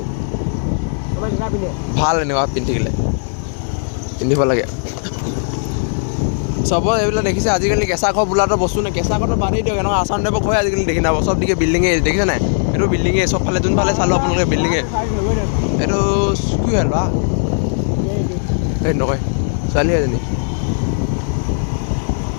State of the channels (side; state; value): right; silent; digital silence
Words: ভাল এনেকুৱা পিন্ধিলে পিন্ধিব লাগে চব এইবিলাক দেখিছে আজিকালি কেঁচা ঘৰ বোলাটো বস্তু নাই কেঁচা ঘৰটো বাদেই দিয়ক এনেকুৱা আছাম টাইপৰ ঘৰ আজিকালি দেখি নাপাব চব দিকে বিল্ডিঙে দেখিছে নাই এইটো বিল্ডিঙে চবফালে যোনফালে চালোঁ আপোনালোকে বিল্ডিঙে এইটো কি হ'ল বা এই নকয় ছোৱালী এজনী